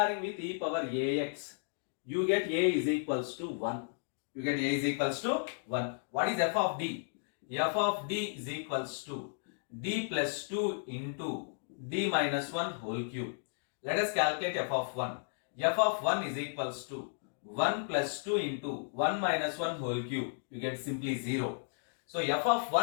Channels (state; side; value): silent; right; digital silence